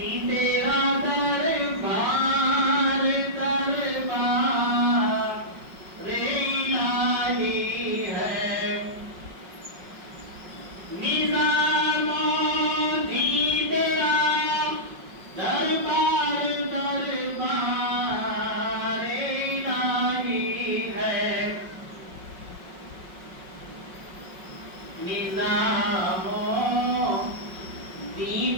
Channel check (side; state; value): left; late; 5.4 ms